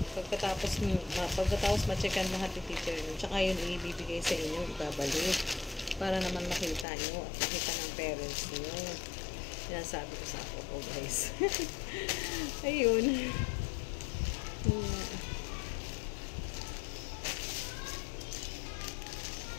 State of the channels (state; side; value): drops out; right; at 6.9 s